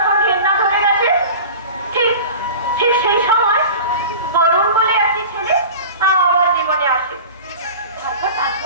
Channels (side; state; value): both; inverted; correlation -0.36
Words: ঘেন্না ধরে গেছে, ঠিক সেই সময় বরুণ বলে একটি ছেলে আমার জীবনে আসে।